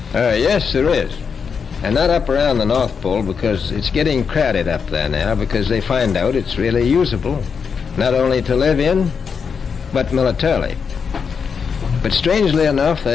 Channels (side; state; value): right; quieter; 6.1 dB